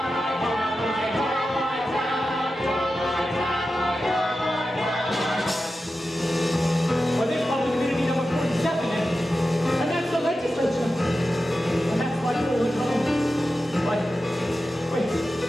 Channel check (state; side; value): normal; both; correlation 0.92